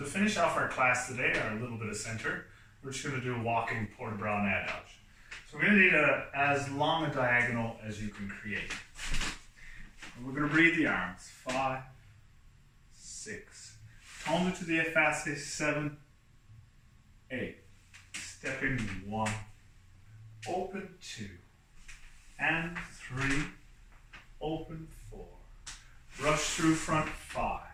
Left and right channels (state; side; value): identical; both; correlation 1.00